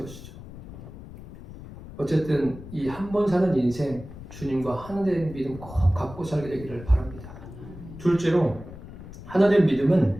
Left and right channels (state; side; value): noise; left; rumble, 15 dB below the sound